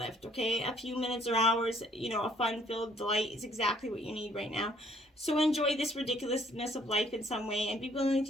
okay? A few minutes or hours, a fun-filled delight is exactly what you need right now. So enjoy this ridiculousness of life in some way and be willing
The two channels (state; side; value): normal; both; correlation 0.62